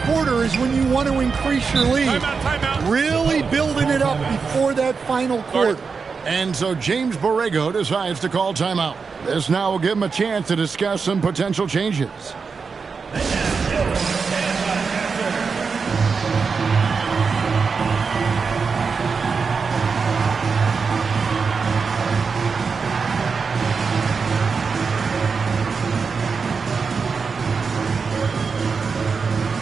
quarter is when you want to increase your lead. Timeout. Really building it up before that final quarter. And so James Borrego decides to call timeout. This now will give him a chance to discuss some potential changes.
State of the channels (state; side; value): quieter; left; 5.2 dB